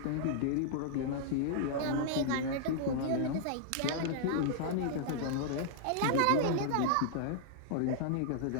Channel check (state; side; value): different; both; correlation -0.01